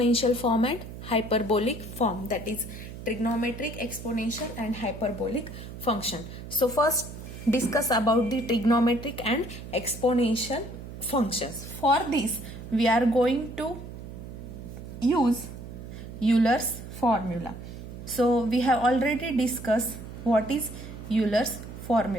form and hyperbolic form. That is trigonometric, exponential and hyperbolic function. So first discuss about the trigonometric and exponential functions. For this, we are going to use Euler's formula. So we have already discussed what is Euler's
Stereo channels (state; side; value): noise; right; hum, 12 dB below the sound